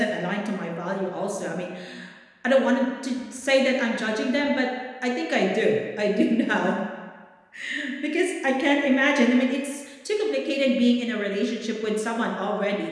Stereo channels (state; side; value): identical; both; correlation 1.00